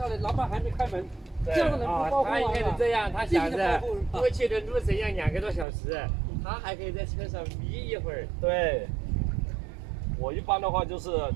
来？老板还没开门，这样的人不包他应该是这样，他想着过去的路程要2个多小时，他还可以在车上眯一会儿。对，我一般的话就是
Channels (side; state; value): left; drops out; at 5.7 s